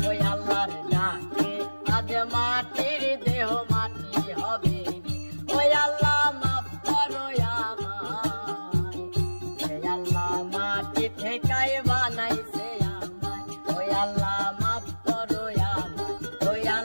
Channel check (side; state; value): both; inverted; correlation -1.00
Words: ওই আল্লাহর ডাকে আজ মাটির দেহ মাটি হবে রে। ওই আল্লাহ মাফ করো আমায়, ওই আল্লাহ মাটি থেকেই বানাইছে আমায়। ওই আল্লাহ মাফ করো আমায়, ওই